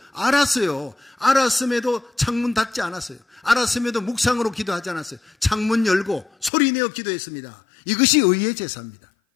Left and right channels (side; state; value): right; drops out; at 6.5 s